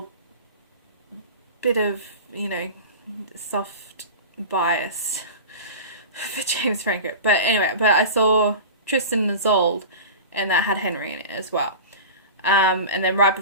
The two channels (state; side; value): inverted; both; correlation -0.32